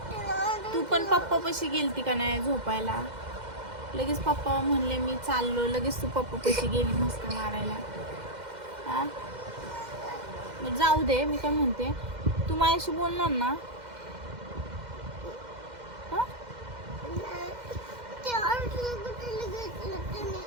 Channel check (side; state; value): left; late; 2.1 ms